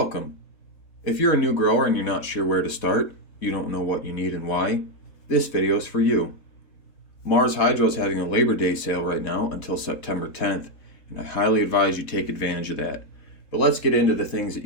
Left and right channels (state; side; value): late; right; 4.1 ms